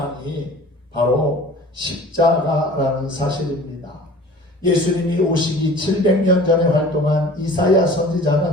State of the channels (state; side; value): normal; both; correlation 0.45